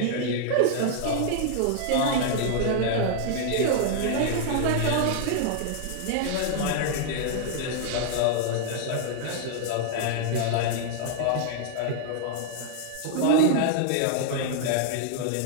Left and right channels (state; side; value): different; both; correlation -0.01